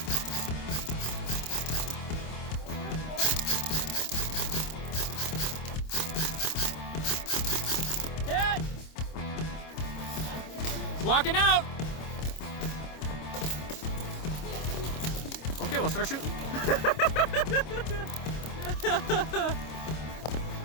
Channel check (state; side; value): late; right; 26 ms